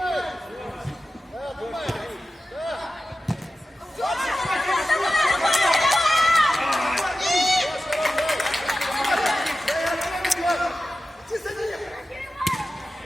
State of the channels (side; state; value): both; normal; correlation 0.94